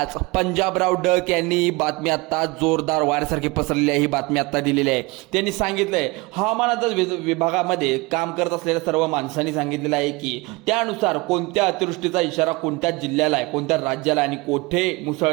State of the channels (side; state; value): left; quieter; 24.3 dB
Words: पंजाबराव डक यांनी बातमी आता जोरदार वाऱ्यासारखी पसरलेली आहे। ही बातमी आता दिलेली आहे। त्यांनी सांगितलंय हवामान अंदाज विभागामध्ये काम करत असलेल्या सर्व माणसांनी सांगितलेलं आहे की त्यानुसार कोणत्या अतिवृष्टीचा इशारा कोणत्या जिल्ह्याला आहे, कोणत्या राज्याला आणि कुठे